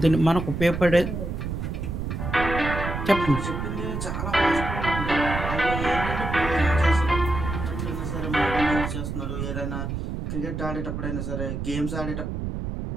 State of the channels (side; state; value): right; noise; rumble, 4 dB below the sound